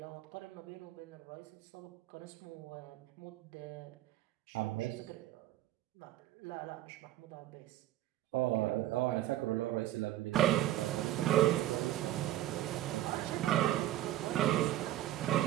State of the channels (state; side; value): quieter; left; 14.0 dB